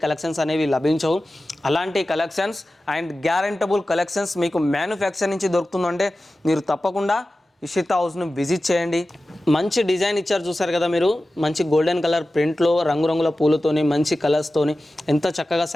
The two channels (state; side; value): normal; both; correlation 0.95